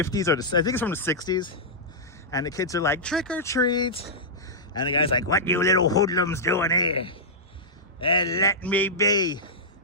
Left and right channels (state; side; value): normal; both; correlation -0.12